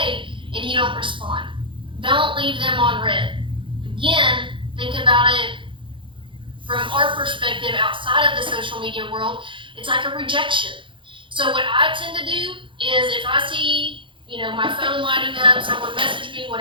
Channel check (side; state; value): left; late; 0.24 ms